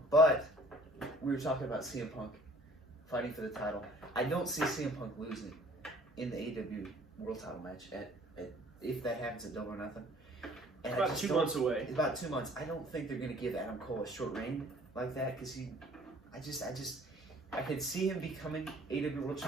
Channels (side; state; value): both; normal; correlation 0.53